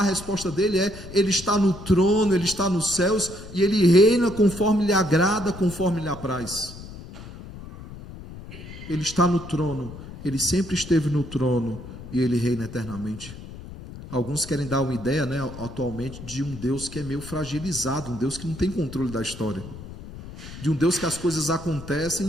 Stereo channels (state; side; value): noise; left; rumble, 13 dB below the sound